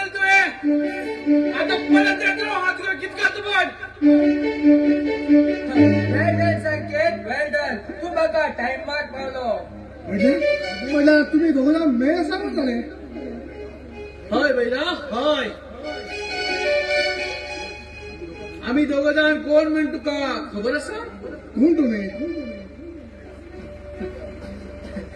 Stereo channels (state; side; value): identical; both; correlation 1.00